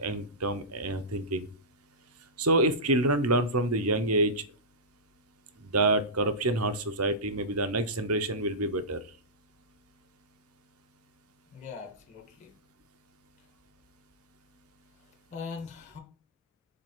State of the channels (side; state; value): both; normal; correlation -0.17